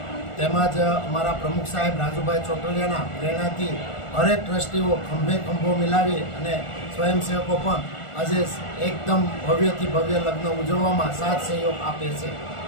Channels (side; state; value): right; late; 1.4 ms